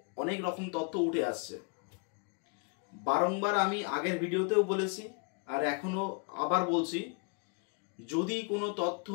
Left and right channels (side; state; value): right; quieter; 34.9 dB